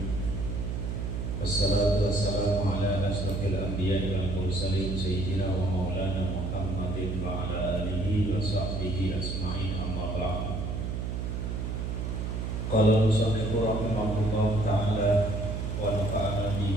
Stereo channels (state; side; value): noise; right; hum, 3 dB below the sound